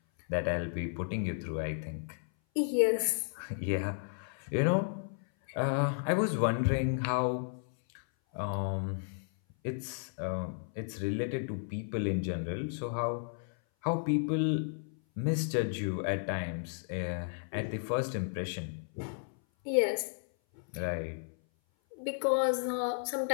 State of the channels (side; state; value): right; silent; 55 dB below the other